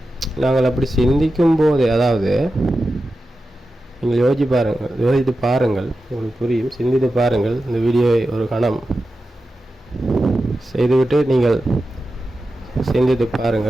நாங்கள் அப்படி சிந்திக்கும் போதே, அதாவது நீங்கள் யோசித்து பாருங்கள், உங்களுக்கு புரியும். சிந்தித்து பாருங்கள். இந்த வீடியோவை ஒரு கணம் செய்துவிட்டு நீங்கள் சிந்தித்து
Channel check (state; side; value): normal; both; correlation 0.92